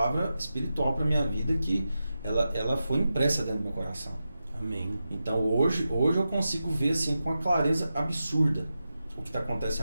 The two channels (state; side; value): inverted; both; correlation -0.91